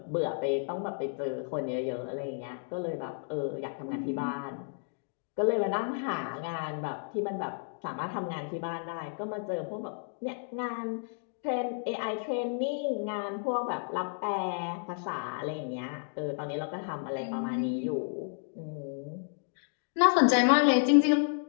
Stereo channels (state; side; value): silent; right; 57 dB below the other